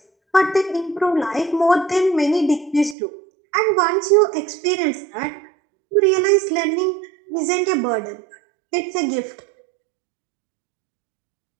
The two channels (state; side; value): drops out; left; at 3.0 s